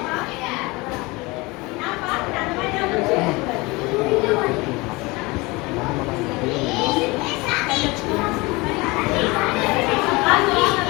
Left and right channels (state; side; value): quieter; right; 23.9 dB